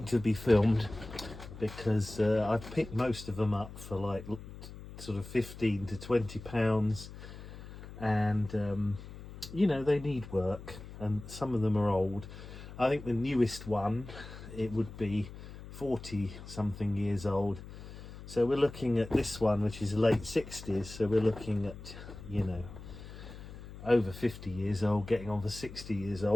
to be filmed, because I've picked most of them up for like sort of 15 to 20 pounds, and you know, they need work, and some of them are old. I think the newest one, it would be 40 something years old, so we're looking at this one, which is late 60s, so we're looking at, you know, over 50 years old, getting on for 60 years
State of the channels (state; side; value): noise; left; hum, 14 dB below the sound